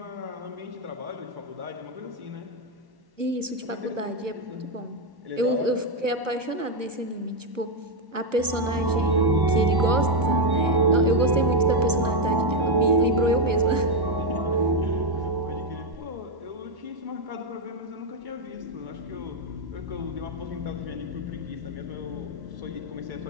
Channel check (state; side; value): late; left; 1.1 ms